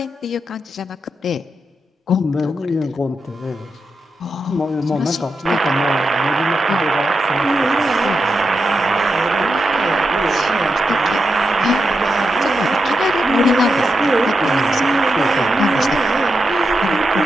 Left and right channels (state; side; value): normal; both; correlation 0.86